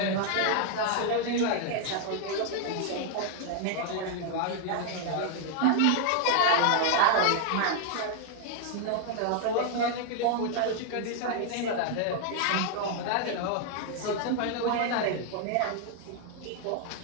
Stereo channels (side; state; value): both; different; correlation 0.00